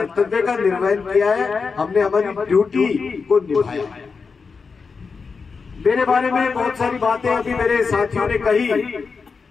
का निर्वहन किया है, हमने हमारी ड्यूटी को निभाया है। मेरे बारे में बहुत सारी बातें अभी मेरे साथियों ने कही।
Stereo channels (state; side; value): quieter; right; 5.0 dB